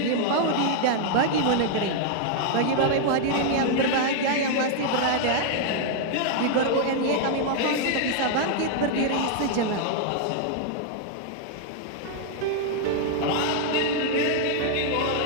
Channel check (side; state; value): both; different; correlation -0.01